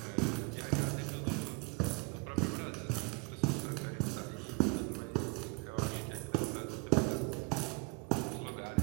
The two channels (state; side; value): quieter; left; 29.5 dB